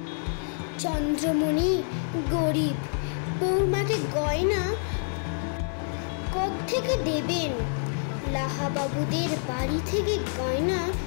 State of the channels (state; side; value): silent; right; 60 dB below the other